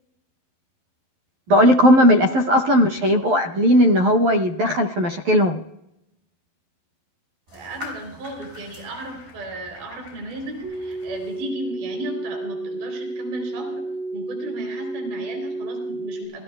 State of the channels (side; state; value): left; late; 11 ms